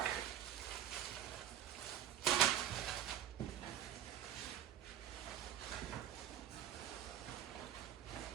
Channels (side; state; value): left; quieter; 10.5 dB